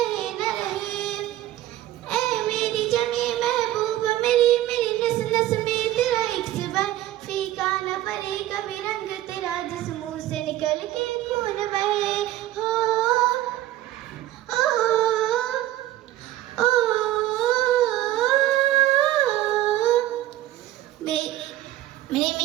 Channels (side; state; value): left; quieter; 14.5 dB